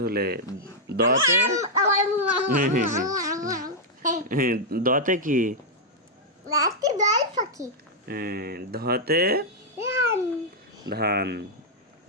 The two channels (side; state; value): both; normal; correlation -0.05